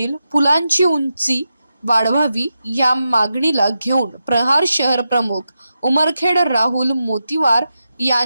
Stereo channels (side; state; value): both; inverted; correlation -0.89